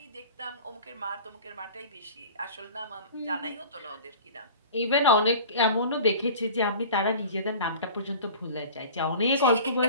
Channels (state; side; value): inverted; both; correlation -0.41